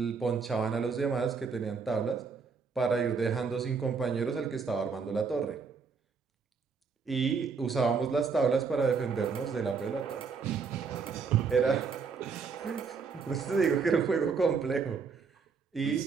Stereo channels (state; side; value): quieter; left; 5.3 dB